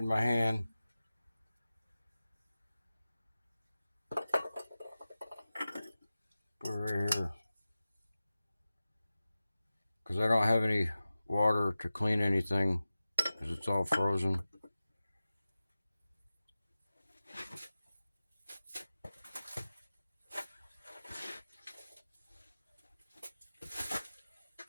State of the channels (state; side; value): inverted; both; correlation -0.95